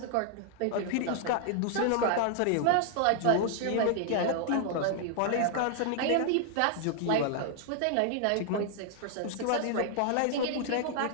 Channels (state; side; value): different; both; correlation 0.00